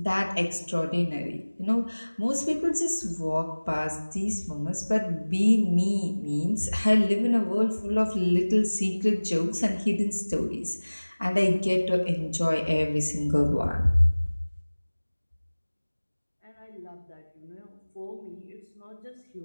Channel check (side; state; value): both; inverted; correlation -1.00